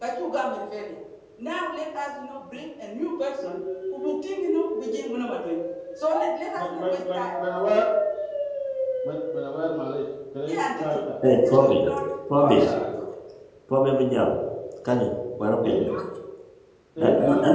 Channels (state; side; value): identical; both; correlation 1.00